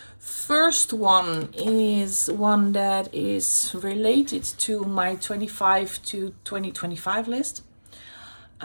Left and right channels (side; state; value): both; inverted; correlation -1.00